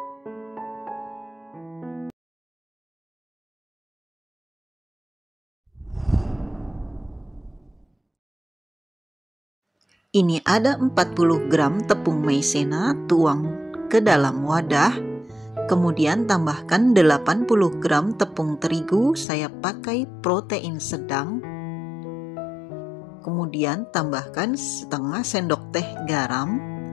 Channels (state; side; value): drops out; right; at 19.2 s